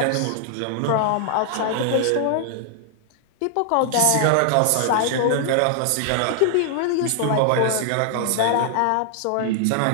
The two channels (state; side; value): different; both; correlation 0.00